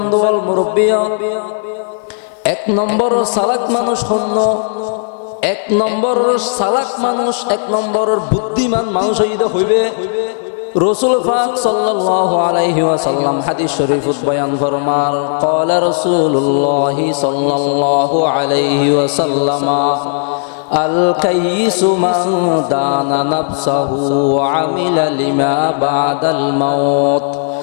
ওয়াল মুরব্বিয়া 1 নম্বর সালাক মানুষ হন এক নম্বরের চালাক মানুষ, এক নম্বরের বুদ্ধিমান মানুষ হইবে রাসূল পাক সাল্লাল্লাহু আলাইহি ওয়াসাল্লাম হাদিস শরীফত বয়ান ফরমার ক্বালা রাসূলুল্লাহ সাল্লাল্লাহু আলাইহি ওয়াসাল্লাম আল কাইসু মান দানা নাফসাহু ওয়া আমিলা লিমা বাদাল মাউত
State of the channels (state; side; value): silent; right; digital silence